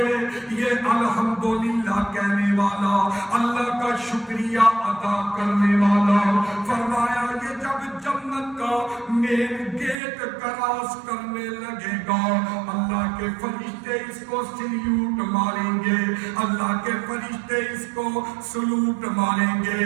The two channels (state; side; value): drops out; left; at 10.0 s